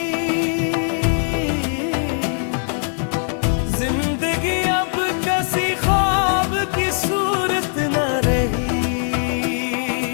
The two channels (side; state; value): right; silent; 59 dB below the other